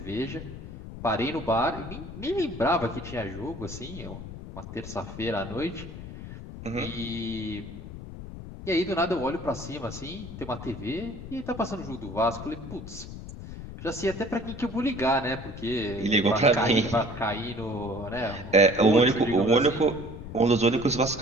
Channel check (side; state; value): left; noise; rumble, 11 dB below the sound